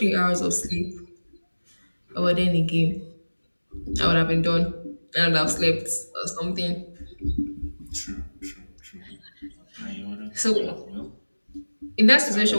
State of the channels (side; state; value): both; inverted; correlation -1.00